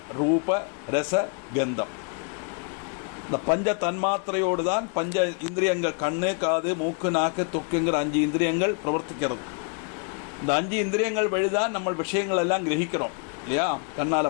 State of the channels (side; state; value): right; quieter; 38.6 dB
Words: ரூப, ரச, கந்தம். இந்த பஞ்ச தன்மாத்திரையோடு தான் பஞ்ச இந்திரியங்கள், கண்ணு, காது, மூக்கு, நாக்கு, தொக்குங்கிற 5 இந்திரியங்கள் பிரவர்த்திக்கிறது. இந்த 5 இந்திரியங்கள் வழிதான் நம்ம விஷயங்கள் எல்லாம் கிரகிக்கிறோம் இல்லையா?